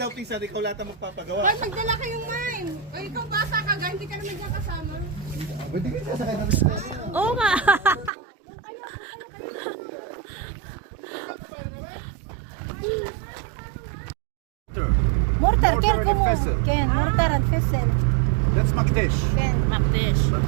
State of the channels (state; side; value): drops out; left; at 8.1 s